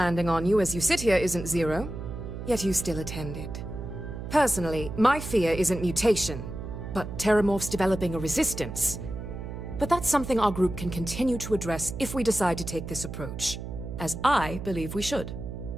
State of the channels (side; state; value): right; noise; hum, 8 dB below the sound